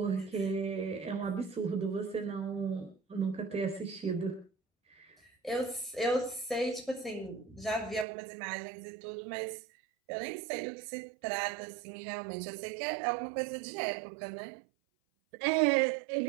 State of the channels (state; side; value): drops out; left; at 8.1 s